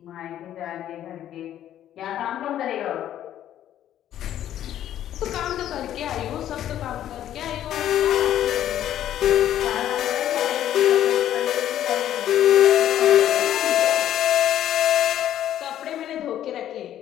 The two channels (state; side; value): quieter; right; 11.5 dB